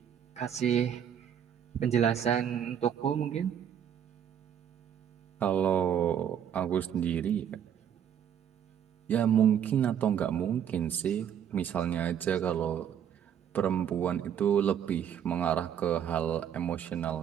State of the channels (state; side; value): quieter; left; 9.1 dB